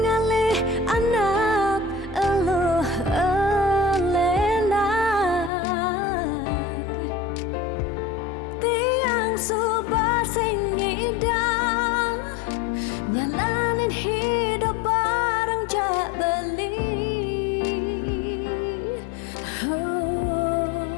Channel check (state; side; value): drops out; right; at 5.5 s